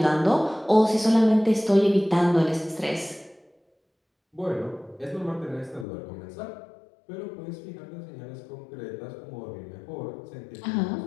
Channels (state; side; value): drops out; right; at 5.9 s